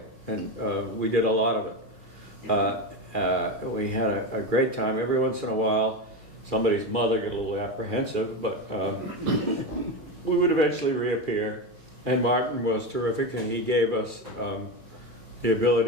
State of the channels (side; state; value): left; late; 5.4 ms